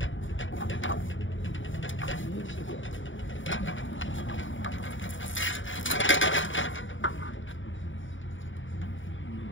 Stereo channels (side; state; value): right; late; 0.56 ms